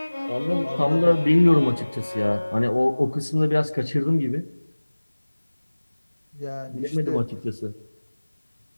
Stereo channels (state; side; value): inverted; both; correlation -1.00